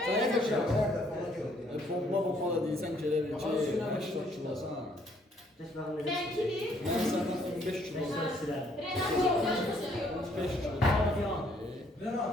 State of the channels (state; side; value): normal; both; correlation 0.66